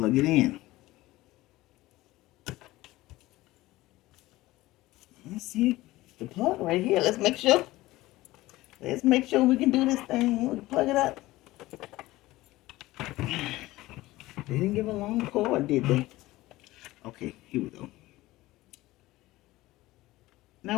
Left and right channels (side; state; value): right; quieter; 18.0 dB